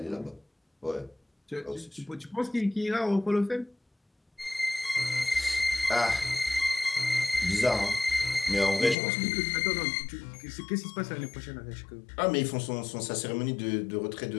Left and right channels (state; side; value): drops out; right; at 9.0 s